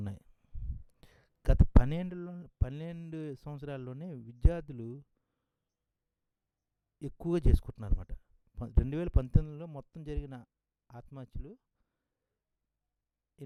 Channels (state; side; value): identical; both; correlation 1.00